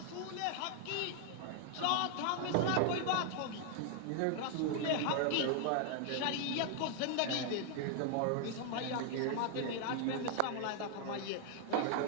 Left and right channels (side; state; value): both; different; correlation 0.00